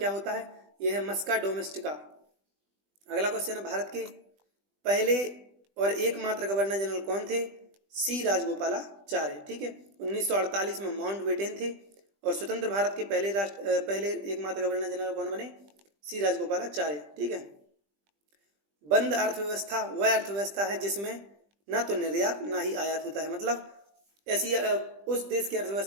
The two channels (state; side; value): late; left; 20 ms